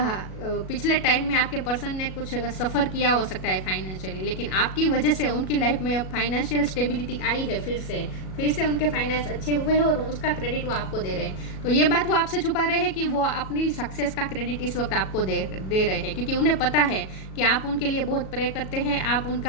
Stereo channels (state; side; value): late; right; 37 ms